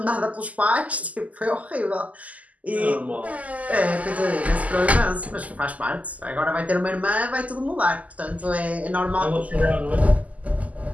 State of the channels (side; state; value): left; late; 0.073 ms